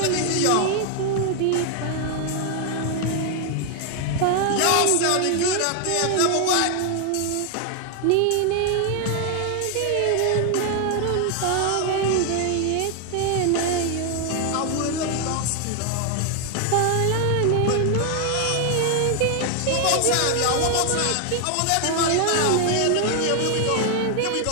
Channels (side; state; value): both; different; correlation 0.00